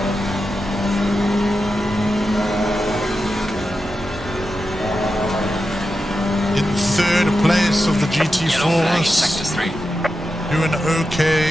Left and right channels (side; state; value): both; normal; correlation 0.90